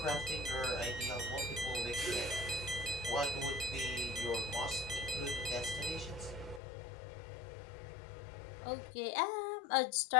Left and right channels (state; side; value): drops out; right; at 6.6 s